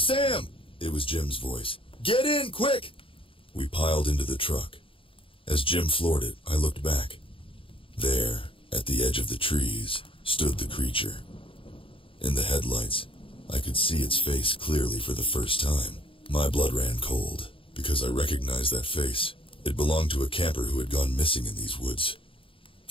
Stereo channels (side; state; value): right; late; 0.26 ms